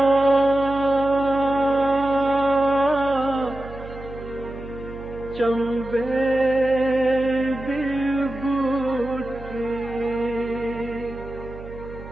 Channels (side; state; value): right; noise; hum, 14 dB below the sound